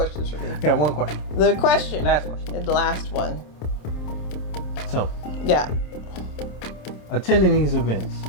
for me? Got one question. The question. Last question. The last one. So. Yeah. Attending these events,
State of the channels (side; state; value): right; late; 27 ms